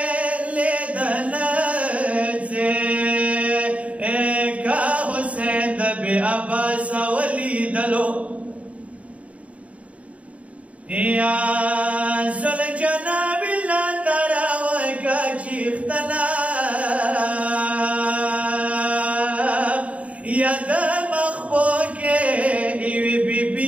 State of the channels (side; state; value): left; late; 0.066 ms